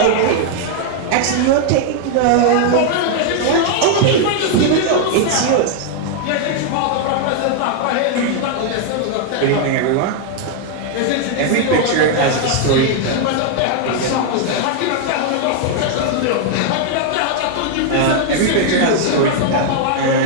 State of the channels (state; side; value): different; both; correlation 0.00